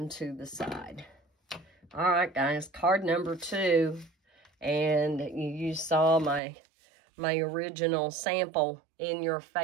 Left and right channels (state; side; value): drops out; left; at 6.4 s